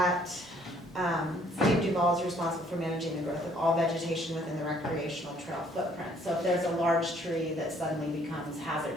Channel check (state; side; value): normal; both; correlation 0.62